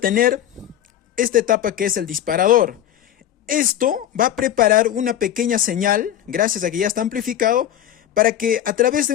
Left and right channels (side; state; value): right; quieter; 11.3 dB